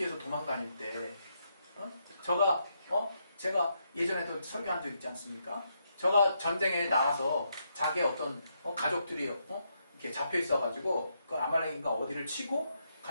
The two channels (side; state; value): both; inverted; correlation -0.79